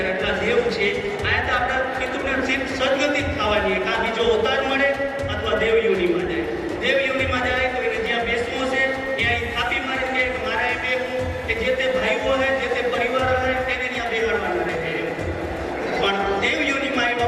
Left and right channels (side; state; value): both; identical; correlation 1.00